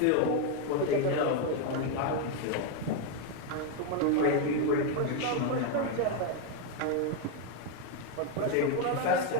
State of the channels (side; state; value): both; different; correlation 0.01